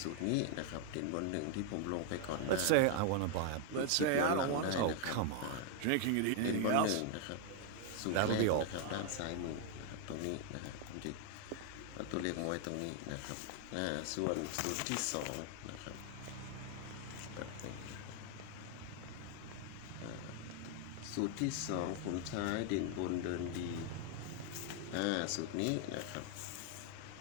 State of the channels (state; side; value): different; both; correlation 0.00